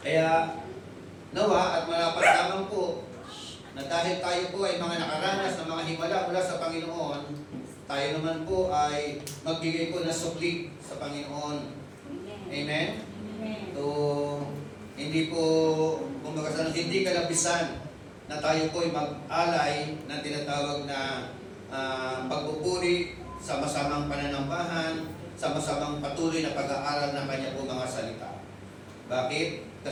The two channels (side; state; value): both; identical; correlation 1.00